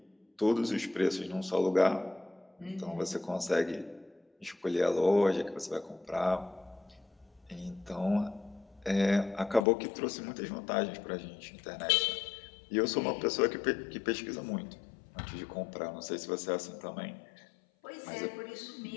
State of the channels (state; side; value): drops out; right; at 9.7 s